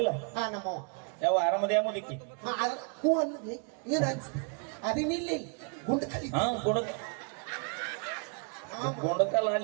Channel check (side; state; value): left; quieter; 39.3 dB